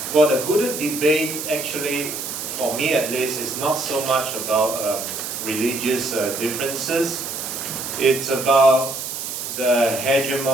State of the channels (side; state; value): right; noise; hiss, 6 dB below the sound